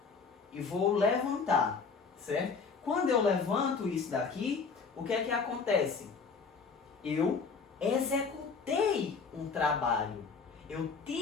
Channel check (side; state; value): right; quieter; 5.1 dB